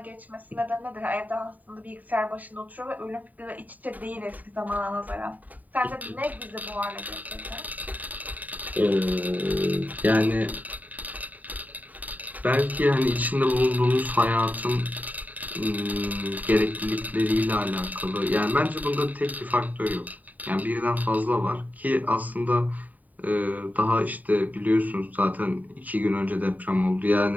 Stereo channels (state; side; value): late; left; 0.078 ms